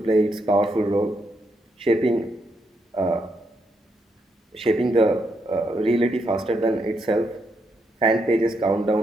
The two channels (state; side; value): normal; both; correlation 0.79